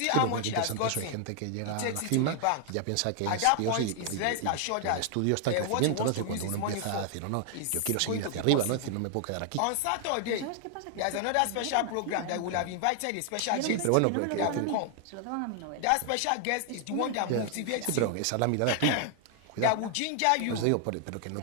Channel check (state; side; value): different; both; correlation 0.00